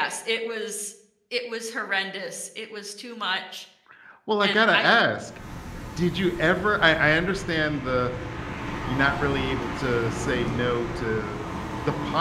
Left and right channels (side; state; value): both; identical; correlation 1.00